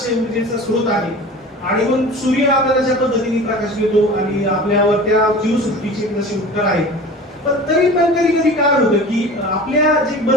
ऊर्जेचा स्रोत आहे आणि मग सूर्य आपल्याला ज्या पद्धतीने प्रकाश देतो आणि आपल्यावर त्या जीवसृष्टीचे जसे उपकार आहेत. पण तरी पण कधी काय होतं की आपल्या जे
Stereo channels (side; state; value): both; normal; correlation 0.38